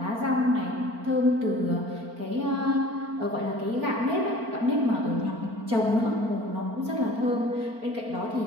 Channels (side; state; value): left; late; 4.4 ms